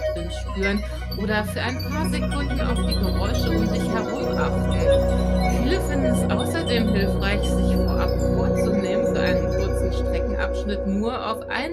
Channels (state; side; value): identical; both; correlation 1.00